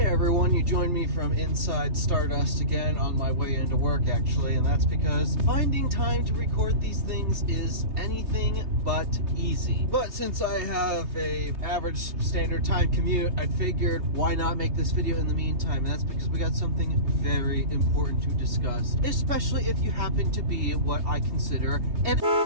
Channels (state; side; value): late; left; 3.3 ms